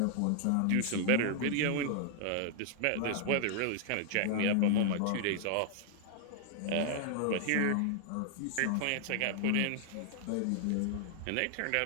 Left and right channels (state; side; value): different; both; correlation 0.00